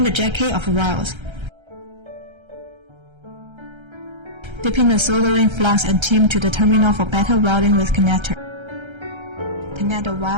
the jacket of wires. Dipping the soldering flux and tin to the terminal for better welding with connector. Connect the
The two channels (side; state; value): left; late; 1.3 ms